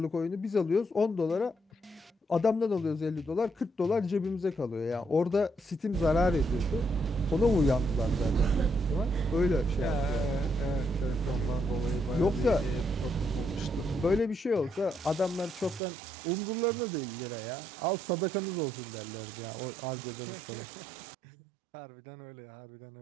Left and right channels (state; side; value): drops out; left; at 15.8 s